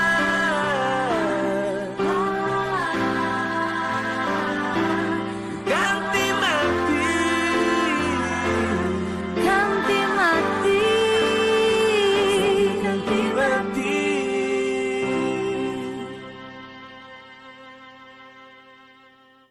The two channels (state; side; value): identical; both; correlation 1.00